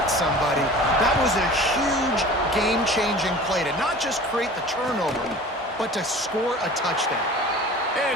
somebody. That was a huge game-changing play to not just create the turnover, but to score a touchdown.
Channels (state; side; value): normal; both; correlation 0.41